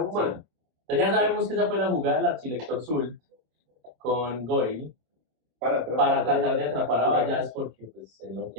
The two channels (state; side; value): late; left; 26 ms